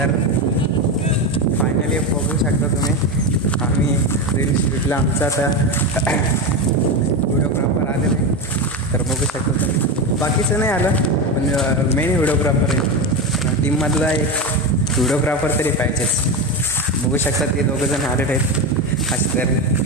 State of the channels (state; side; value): normal; both; correlation 0.17